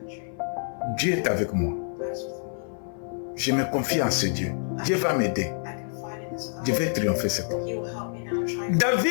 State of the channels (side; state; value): right; silent; 55 dB below the other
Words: Dieu est avec moi. God's with me. Je me confie en ce Dieu. Dieu va m'aider. I confide in this God. Je vais triompher cet homme. He will help me now try to